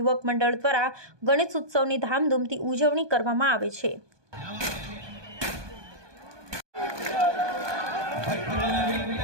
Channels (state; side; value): late; left; 1.2 ms